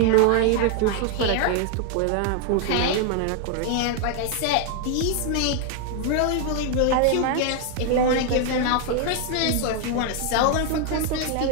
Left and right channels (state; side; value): different; both; correlation 0.00